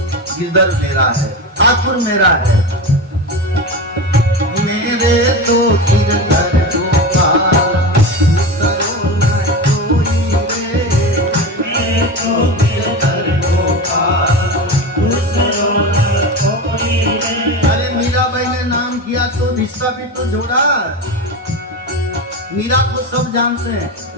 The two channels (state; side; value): normal; both; correlation 0.23